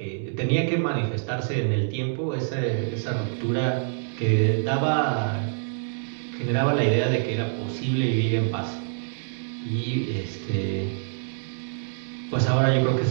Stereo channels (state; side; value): silent; left; 61 dB below the other